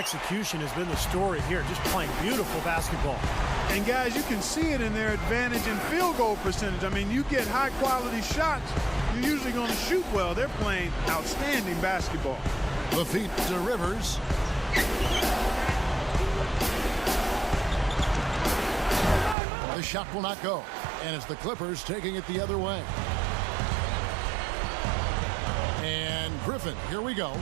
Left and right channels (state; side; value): drops out; left; at 19.4 s